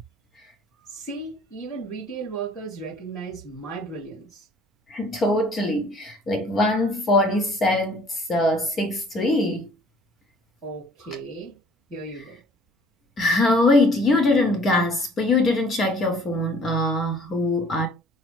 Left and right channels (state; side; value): normal; both; correlation 0.54